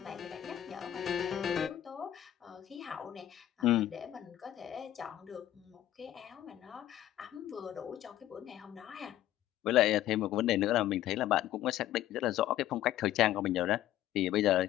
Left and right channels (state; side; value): quieter; right; 12.8 dB